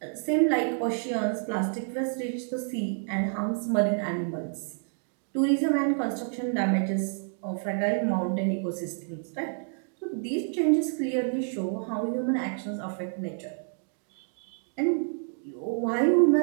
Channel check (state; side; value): silent; left; 59 dB below the other